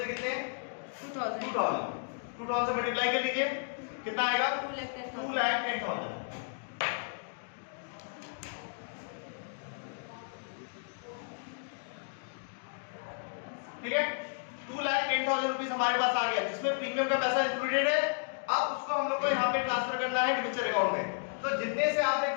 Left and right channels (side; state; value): right; silent; digital silence